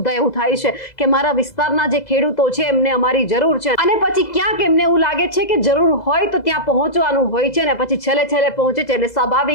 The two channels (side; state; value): right; late; 2.0 ms